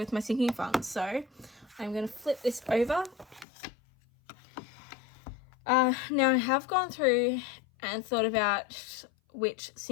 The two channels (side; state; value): right; drops out; at 3.5 s